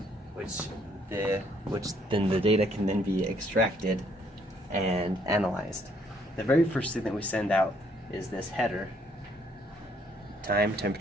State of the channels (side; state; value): both; normal; correlation 0.67